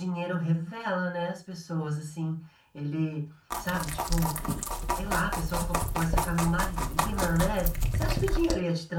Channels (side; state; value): both; identical; correlation 1.00